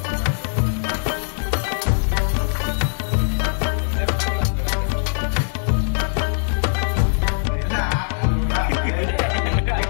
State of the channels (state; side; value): silent; right; digital silence